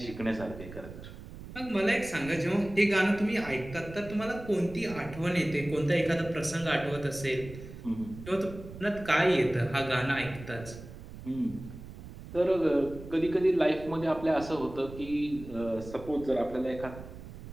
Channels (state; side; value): noise; right; rumble, 14 dB below the sound